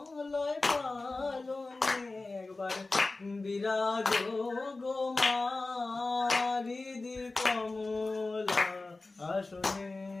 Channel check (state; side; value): quieter; right; 3.4 dB